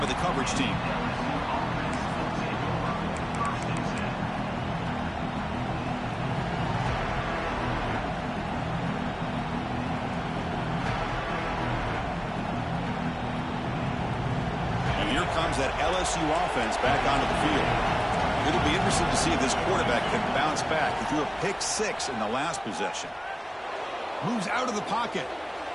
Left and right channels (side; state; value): both; identical; correlation 1.00